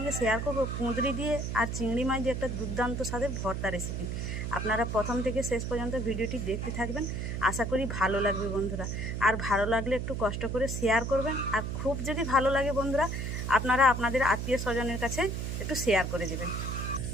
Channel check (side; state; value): right; noise; hum, 3 dB below the sound